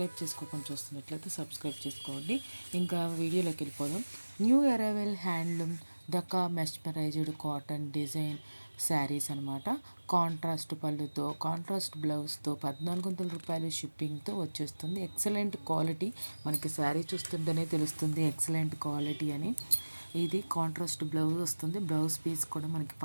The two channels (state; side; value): inverted; both; correlation -1.00